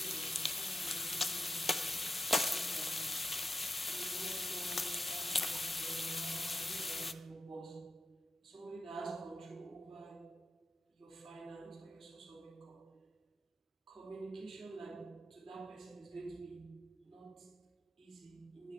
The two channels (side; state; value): both; normal; correlation 0.88